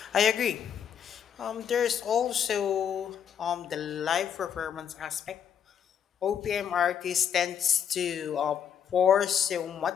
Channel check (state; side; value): quieter; right; 8.4 dB